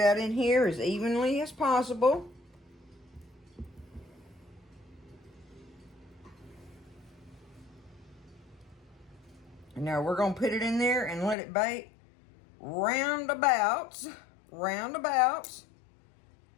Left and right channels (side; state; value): right; drops out; at 11.4 s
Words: in here as evenly as possible. And now we're going to put it in there and let it bake roundabouts